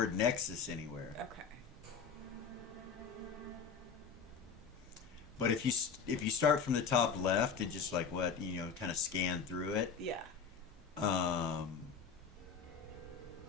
Nexus anywhere. Okay. But if you start from the top left and just kind of scan through it, Yeah.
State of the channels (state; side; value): quieter; right; 6.1 dB